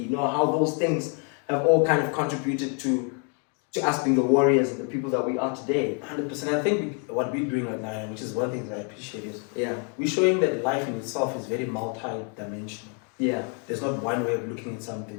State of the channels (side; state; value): right; quieter; 39.6 dB